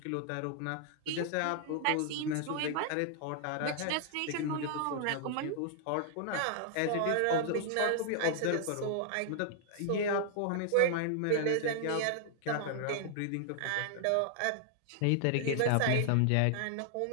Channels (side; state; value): both; different; correlation 0.00